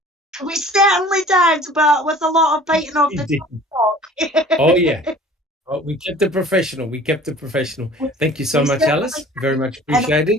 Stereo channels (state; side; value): normal; both; correlation 0.47